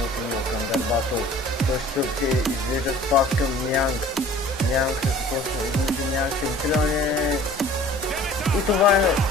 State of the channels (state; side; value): normal; both; correlation 0.48